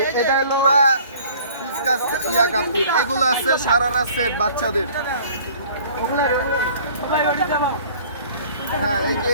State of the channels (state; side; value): inverted; both; correlation -0.51